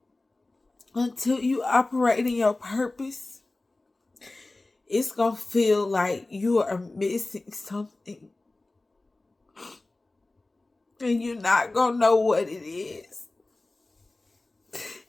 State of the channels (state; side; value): quieter; right; 3.0 dB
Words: until you operate in your purpose, it's going to feel like you are missing something. And you're not going to know what it is.